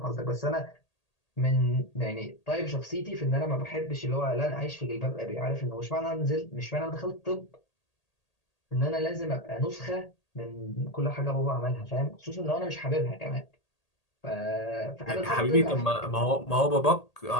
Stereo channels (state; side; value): late; right; 1.8 ms